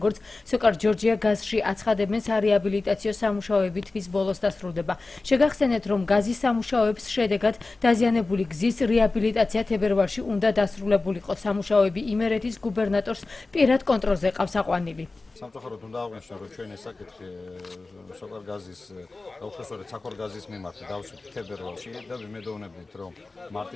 სოკარ ჯორჯია გაზში აცხადებენ, სარეაბილიტაციო სამუშაოები თვის ბოლოს დასრულდება. შეგახსენეთ, რომ გაზის სამუშაოების შედეგად დაზიანებული გზის რეაბილიტაცია თებერვალში უნდა დასრულებულიყო. სამუშაოები იმერეთის გუბერნატორს პირად კონტროლზე ყავს აყვანილი. სამწუხაროდ უნდა აღვნიშნო, რომ ჩვენ ეს საკითხი სოკარ გაზის უხეშორეთ საქორ გაზის მიმართ დავსვით თებერვალში და ვიმედოვნებით, რომ მარტი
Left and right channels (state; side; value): quieter; right; 3.5 dB